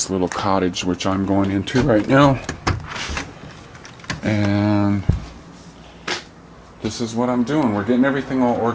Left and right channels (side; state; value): both; identical; correlation 1.00